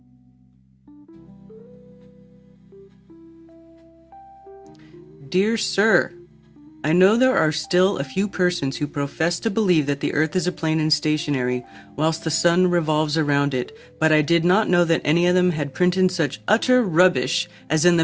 Dear Sir, I know there are still a few persons who profess to believe that the Earth is a plane and stationary, whilst the sun revolves around it, but I did not know that any of them had printed such utter rubbish as in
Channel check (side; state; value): both; identical; correlation 1.00